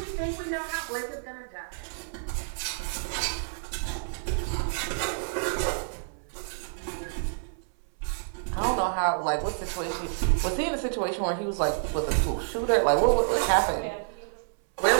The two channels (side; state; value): left; silent; 59 dB below the other